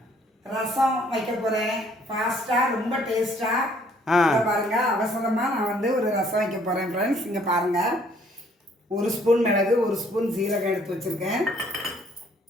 ரசம் வைக்க போகிறேன். ஃபாஸ்ட்டாக ரொம்ப டேஸ்ட்டாக பாருங்க. அவசரமாக நான் வந்து ஒரு ரசம் வைக்க போகிறேன் ஃப்ரெண்ட்ஸ். இங்கே பாருங்கள், 1 ஸ்பூன் மிளகு, 1 ஸ்பூன் சீரகம் எடுத்து வச்சுருக்கேன்.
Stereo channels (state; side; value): normal; both; correlation 0.62